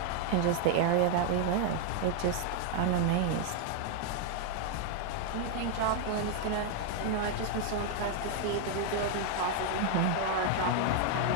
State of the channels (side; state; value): both; different; correlation 0.00